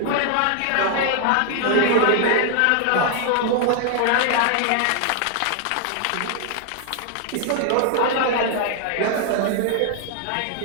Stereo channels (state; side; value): different; both; correlation 0.00